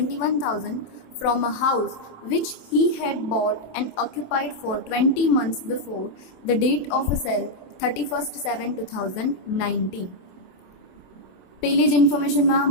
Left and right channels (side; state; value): right; late; 27 ms